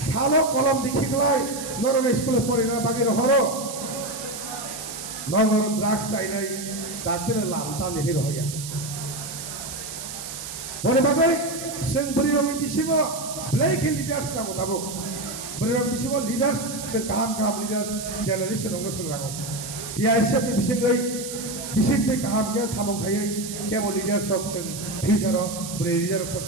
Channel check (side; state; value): right; noise; hiss, 9 dB below the sound